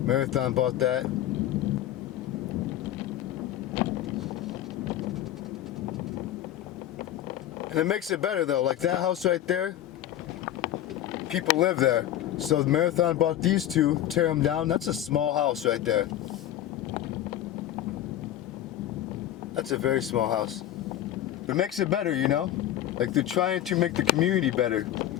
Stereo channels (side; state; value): right; quieter; 12.4 dB